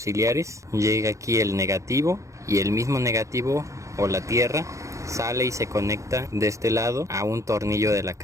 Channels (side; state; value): left; late; 0.15 ms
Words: Llega aquí el negativo y el mismo negativo o la tierra sale y se conecta de este lado a un tornillo de la